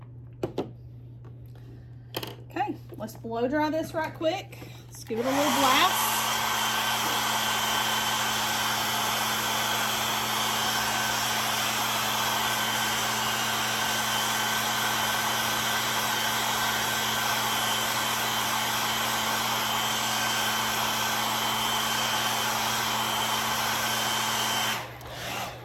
Let's blow dry this right quick. Let's give it a little blast.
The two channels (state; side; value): identical; both; correlation 1.00